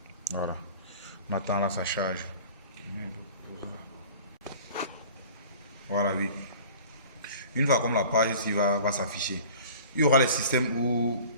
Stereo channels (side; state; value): both; inverted; correlation -0.45